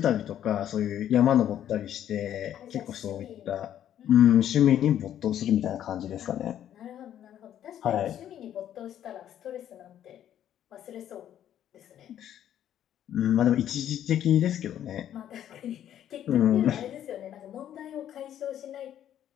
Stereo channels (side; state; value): right; quieter; 10.8 dB